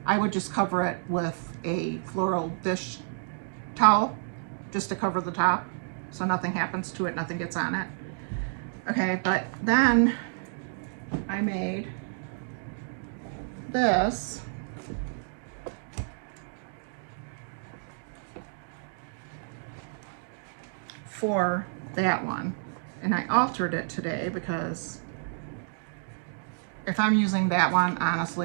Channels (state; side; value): silent; left; digital silence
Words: I would just cover it with a floral dish towel just to cover the top so nothing happens to it, nothing gets on it. Okay, but then I made this for that one, and I altered it today because if I'm using that one,